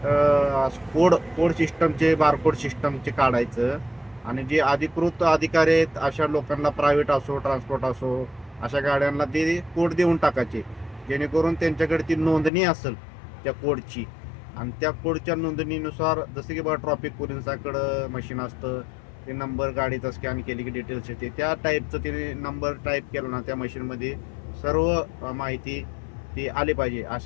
कोड सिस्टमचे, बारकोड सिस्टमचे काढायचं आणि जे अधिकृत अधिकारी आहेत अशा लोकांना, प्रायव्हेट असो ट्रान्सपोर्ट असो, अशा गाड्यांना ते कोड देऊन टाकायचे, जेणेकरून त्यांच्याकडे ती नोंदणी असेल त्या कोडची. आणि त्या कोडच्या नोंदणीनुसार जसं की बघा ट्रॉफिक पोलिसांकडं मशीन असतं, ते नंबर गाडीचा स्कॅन केली की डिटेल्स येते, त्या टाईपचं ते नंबर टाईप केलं ना त्या मशीनमध्ये सर्व माहिती ती आली पाहिजे.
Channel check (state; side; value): drops out; right; at 12.5 s